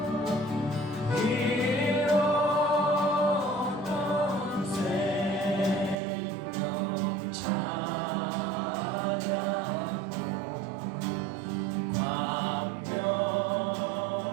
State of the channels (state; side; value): drops out; left; at 6.0 s